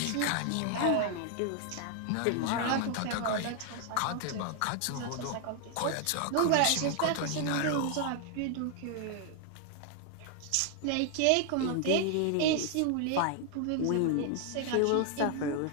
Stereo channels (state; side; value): different; both; correlation 0.00